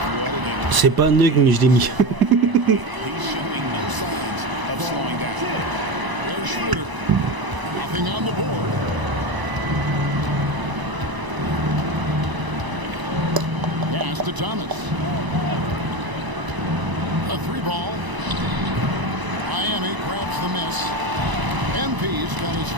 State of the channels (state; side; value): late; left; 1.0 ms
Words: C'est pas un nug, mais je l'ai mis. Pass to Thomas. A 3-ball. Miami grabs the miss. MP's got his